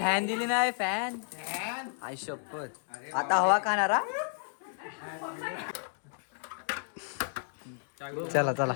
दिली नाही फॅन आई शपथ आता हवा खाणारा चला चला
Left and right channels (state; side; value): silent; right; digital silence